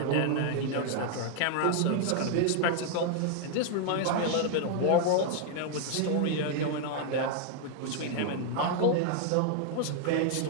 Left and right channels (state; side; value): different; both; correlation 0.00